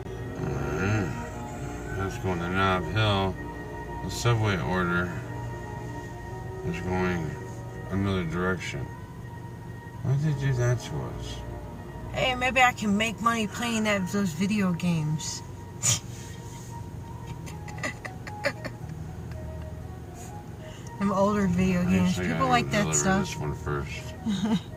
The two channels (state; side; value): identical; both; correlation 1.00